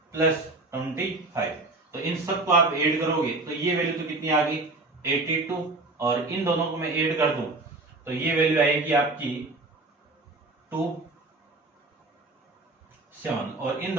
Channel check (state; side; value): quieter; left; 3.1 dB